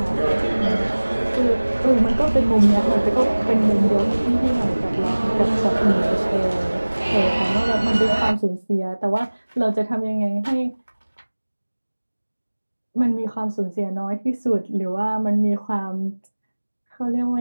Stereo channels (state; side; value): inverted; both; correlation -1.00